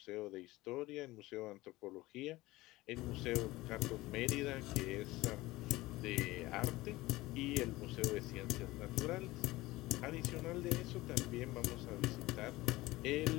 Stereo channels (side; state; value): right; quieter; 19.1 dB